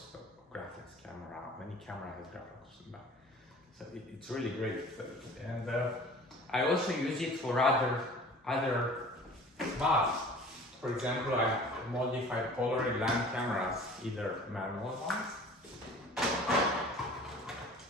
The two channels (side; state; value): both; normal; correlation 0.45